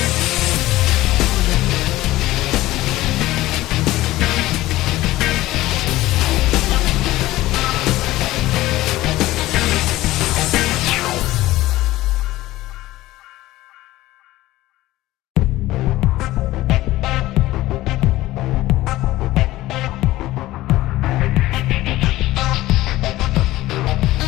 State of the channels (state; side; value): quieter; right; 16.8 dB